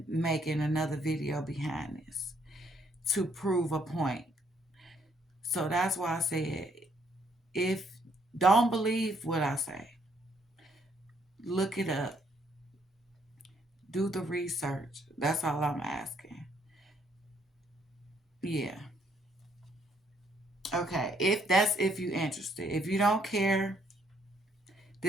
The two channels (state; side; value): normal; both; correlation 0.69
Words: making another video behind this to prove a point. So that's why I said, if don't believe what I say, look it up, do the research. That's all I'm asking. Yeah. Okay. If you interested. If you don't care,